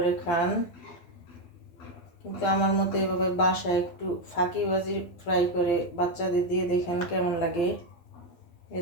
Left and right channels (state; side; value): late; right; 12 ms